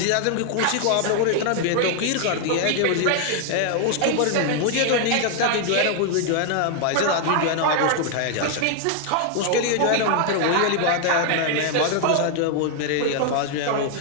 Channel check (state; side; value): different; both; correlation 0.00